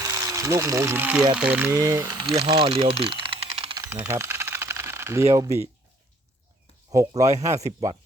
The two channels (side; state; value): both; normal; correlation 0.60